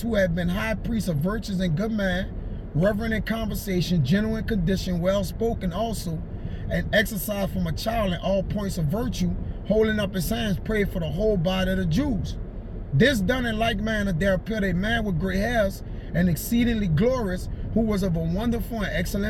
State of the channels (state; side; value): identical; both; correlation 1.00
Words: who had been high priest of virtues and good man, reverent in conversation, gentle in condition, well-spoken also, and exercised from a child in all points of virtue, holding up his hands, prayed for the whole body of the Jews. This done in like manner, there appeared a man with gray hairs and exceedingly glorious, who was of a wonderful and